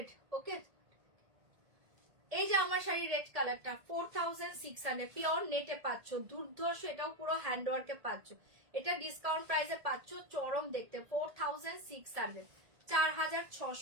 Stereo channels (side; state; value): left; late; 1.7 ms